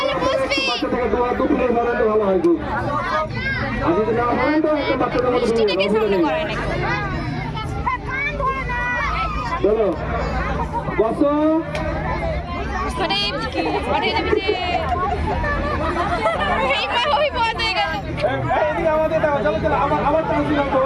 বাচ্চা থেকে দু প্লেট ভলেন্টিয়ার ভালো হয় খুব। আর যদি না হয় তো একটা বাচ্চাদের মতো চলো বসো। আমাদের দাও, চলো চলো, আবার চান্স দিলাম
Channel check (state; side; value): identical; both; correlation 1.00